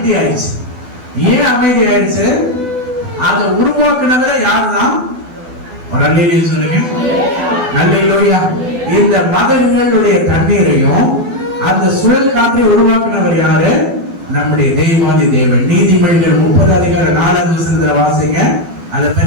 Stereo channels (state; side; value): late; left; 12 ms